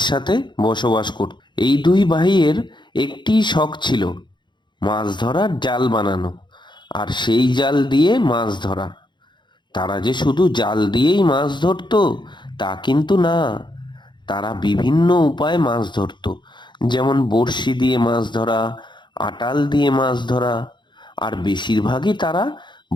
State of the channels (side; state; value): right; late; 0.22 ms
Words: সাথে বসবাস করত। এই দুই ভাইয়ের একটিই শখ ছিল, মাছ ধরার জাল বানানো আর সেই জাল দিয়ে মাছ ধরা। তারা যে শুধু জাল দিয়েই মাছ ধরতো তা কিন্তু না, তারা বিভিন্ন উপায়ে মাছ ধরতো। যেমন বড়শি দিয়ে মাছ ধরা, আটাল দিয়ে মাছ ধরা, আর বেশিরভাগই তারা